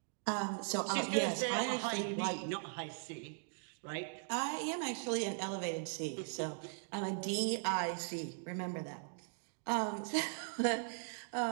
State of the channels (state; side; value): silent; left; digital silence